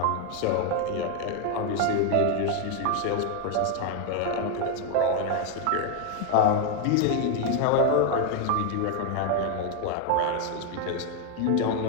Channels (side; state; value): both; different; correlation 0.00